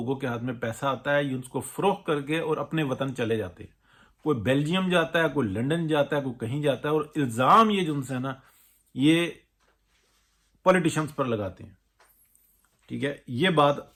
کے ہاتھ میں پیسہ آتا ہے، یہ اس کو فروخت کر کے اور اپنے وطن چلے جاتے ہیں. کوئی بیلجیم جاتا ہے، کوئی لنڈن جاتا ہے، کوئی کہیں جاتا ہے، اور الزام یہ جو ہے نا یہ پولیٹیشنز پر لگاتے ہیں. ٹھیک ہے، یہ بات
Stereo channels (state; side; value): identical; both; correlation 1.00